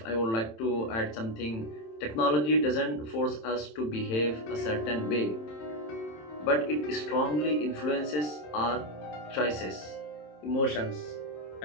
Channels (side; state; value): right; late; 27 ms